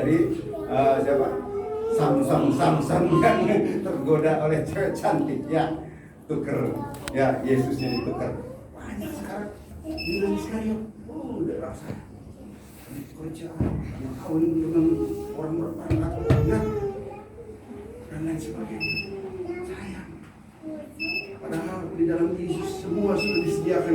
siapa? Samsung yang tergoda oleh cewek cantik ya. Tuker ya, Yesusnya ditukar. Banyak sekarang Yudas Iskariot. Udah rasa kerja yang kawin dengan orang berpangkat. di dalam Yesus semua sudah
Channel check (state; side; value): identical; both; correlation 1.00